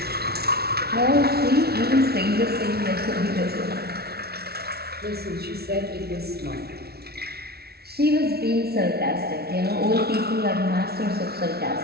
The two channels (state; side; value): late; left; 0.45 ms